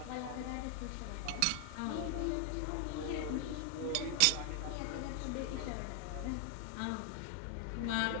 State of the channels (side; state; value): both; different; correlation 0.00